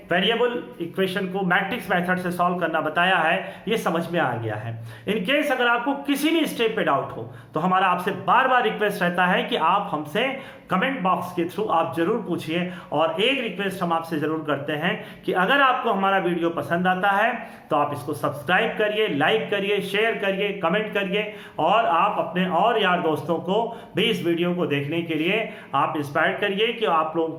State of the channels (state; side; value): identical; both; correlation 1.00